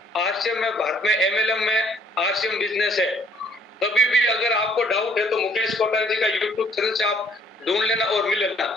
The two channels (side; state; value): both; normal; correlation 0.60